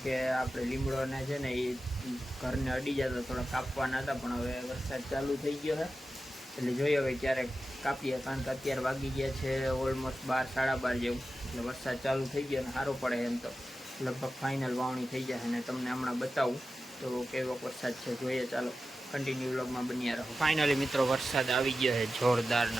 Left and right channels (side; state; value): both; normal; correlation 0.92